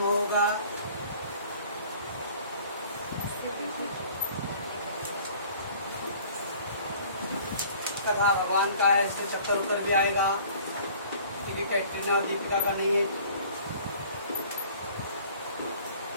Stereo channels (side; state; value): both; inverted; correlation -0.50